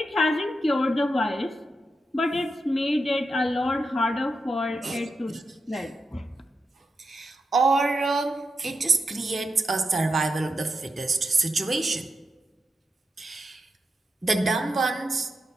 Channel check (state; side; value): normal; both; correlation 0.86